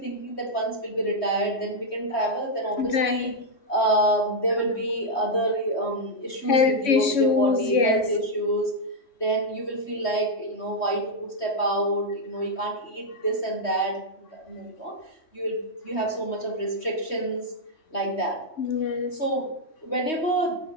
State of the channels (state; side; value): late; right; 3.1 ms